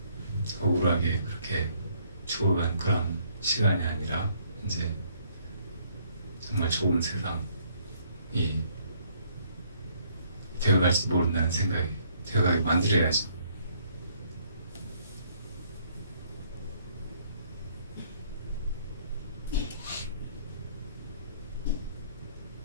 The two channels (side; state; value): both; inverted; correlation -0.66